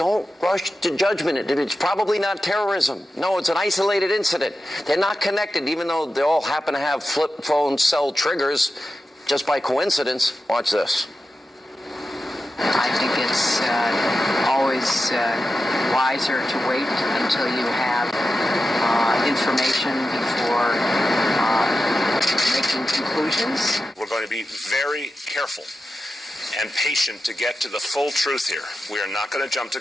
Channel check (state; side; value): normal; both; correlation 0.91